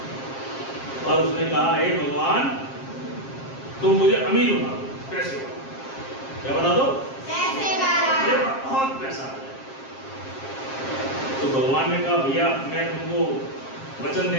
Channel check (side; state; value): right; late; 7.5 ms